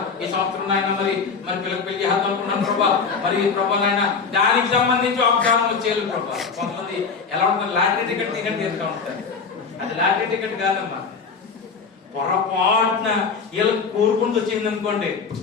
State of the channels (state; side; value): quieter; right; 5.2 dB